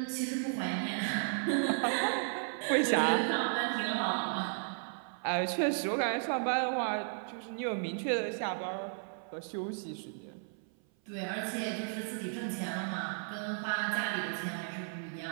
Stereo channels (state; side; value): silent; left; 55 dB below the other